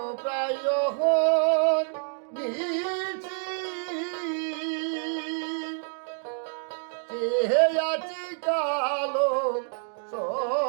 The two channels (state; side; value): silent; left; 60 dB below the other